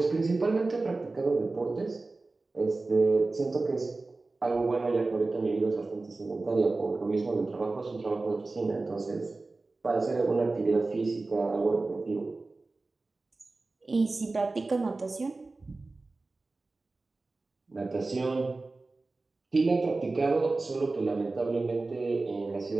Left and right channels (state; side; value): quieter; left; 3.4 dB